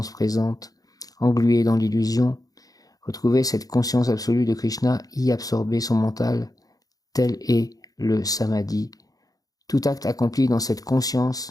présente, engluée dans l'illusion. Retrouver cette conscience absolue de Krishna, y absorber son mental, tel est le samadhi. Tout acte accompli dans cette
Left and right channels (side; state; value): right; late; 0.18 ms